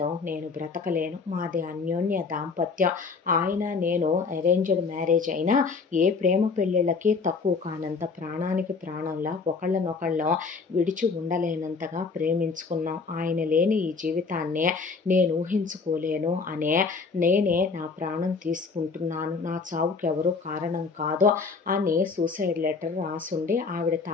నేను బ్రతకలేను, మాది అన్యోన్య దాంపత్యం, ఆయన నేను అరేంజ్డ్ మ్యారేజ్ అయినా ఏ ప్రేమ పెళ్ళిళ్ళకి తక్కువ కానంత ప్రాణానికి ప్రాణంలా ఒకళ్ళనొకళ్ళం విడిచి ఉండలేనంతగా ప్రేమించుకున్నాం, ఆయన లేని ఈ జీవితాన్ని నేను ఊహించుకోలేను అనే నేనే నా ప్రాణం తీసుకుంటున్నాను, నా చావుకి ఎవరు కారణం కాదు అని సూసైడ్ లెటర్ రాసుండి ఆవిడ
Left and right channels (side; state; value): right; quieter; 4.7 dB